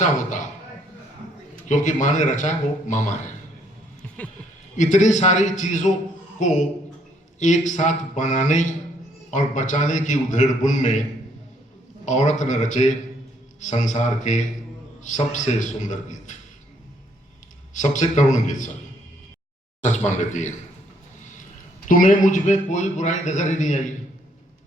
होता, क्योंकि मां ने रचा वो मामा है। इतनी सारी चीजों को एक साथ बनाने और बचाने की उधेड़-बुन में औरत ने रचे संसार के सबसे सुंदर गीत, सबसे करुण गीत। सच मान लेती है। तुम्हें मुझ में कोई बुराई नजर ही नहीं आई।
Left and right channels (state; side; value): normal; both; correlation 0.68